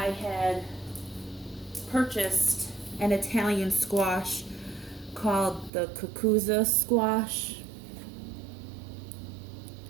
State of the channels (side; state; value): left; drops out; at 5.7 s